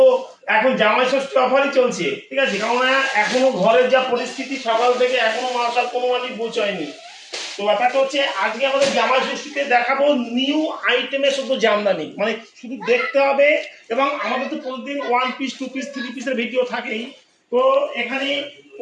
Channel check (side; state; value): both; identical; correlation 1.00